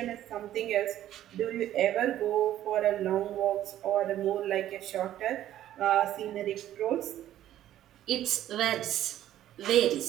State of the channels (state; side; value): quieter; left; 12.5 dB